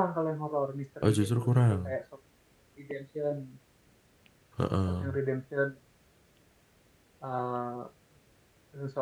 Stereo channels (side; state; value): both; identical; correlation 1.00